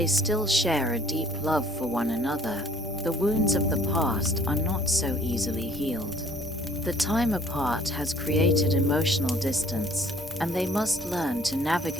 still share a deep love for one another, the wounds of the past are not so easily healed. The time apart has created emotional distance, and they must learn to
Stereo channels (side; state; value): both; normal; correlation 0.57